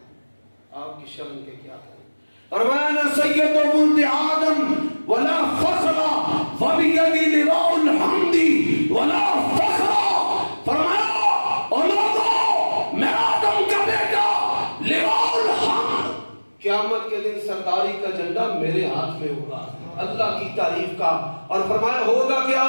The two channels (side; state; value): both; inverted; correlation -1.00